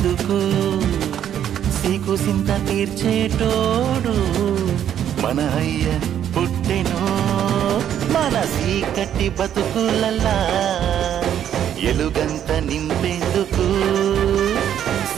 సీకు సింత తీర్చేటోడు మన అయ్య పుట్టెను మన చీకటి బతుకులల్లా ఎలుగంత నింపేందుకు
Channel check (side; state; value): left; quieter; 10.0 dB